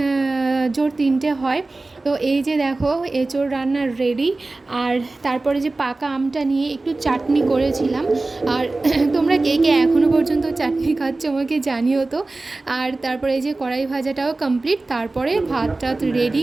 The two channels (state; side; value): quieter; left; 3.2 dB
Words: জোর 3টে হয়। তো এই যে দেখো এঁচোড় রান্নার রেডি। আর তারপরে যে পাকা আমটা নিয়ে একটু চাটনি করেছিলাম। আর তোমরা কে কে এখনও পর্যন্ত চাটনি খাচ্ছ আমাকে জানিও তো। আর তারপরে এই যে কড়াই ভাজাটাও কমপ্লিট, তারপরে ভাতটা রেডি